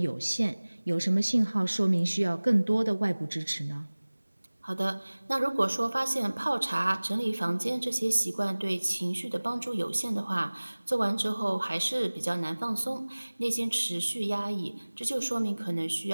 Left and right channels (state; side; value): inverted; both; correlation -1.00